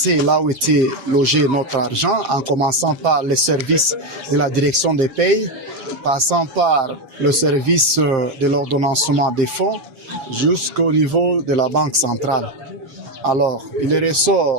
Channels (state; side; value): late; left; 7.5 ms